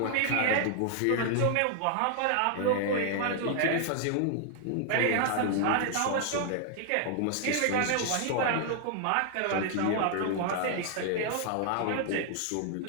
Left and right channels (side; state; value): both; different; correlation 0.00